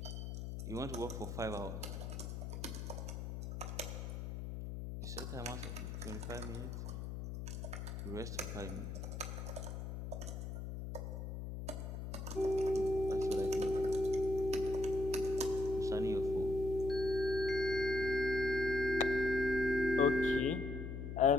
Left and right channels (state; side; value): noise; left; hum, 6 dB below the sound